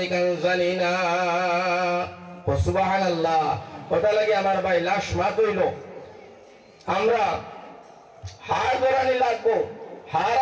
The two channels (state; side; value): identical; both; correlation 1.00